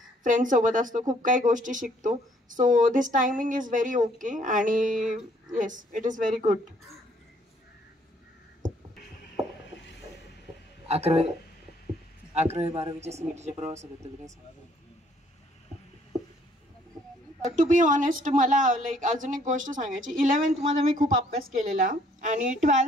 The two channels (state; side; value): normal; both; correlation 0.64